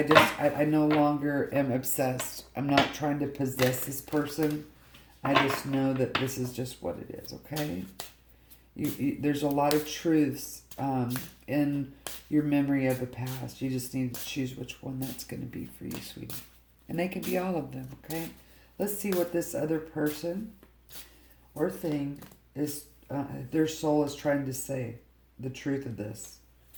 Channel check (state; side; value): identical; both; correlation 1.00